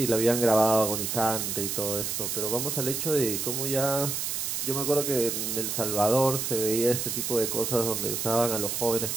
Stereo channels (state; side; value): noise; right; hiss, 2 dB below the sound